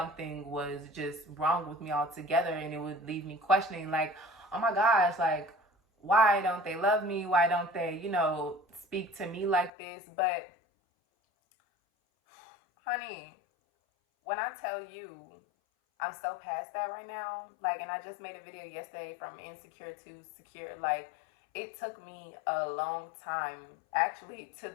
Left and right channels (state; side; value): drops out; right; at 9.7 s